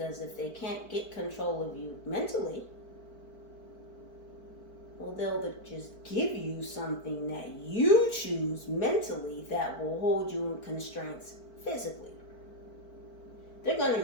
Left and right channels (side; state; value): right; late; 4.5 ms